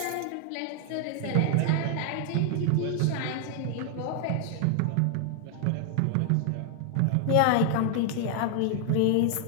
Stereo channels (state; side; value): different; both; correlation 0.00